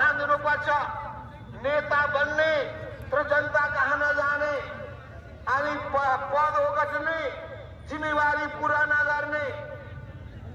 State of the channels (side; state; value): both; identical; correlation 1.00